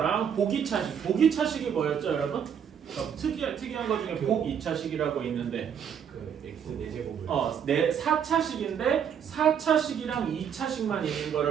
보기차식이 뭐였죠 여러분? 특이한 거 중에 복2차식이라고 있는데 그 x 4제곱을 4차식인데 4차식이랑 2차식만 있는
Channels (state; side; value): quieter; left; 8.1 dB